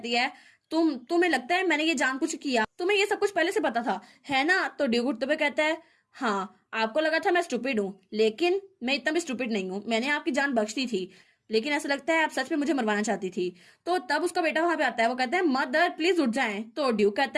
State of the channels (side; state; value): both; identical; correlation 1.00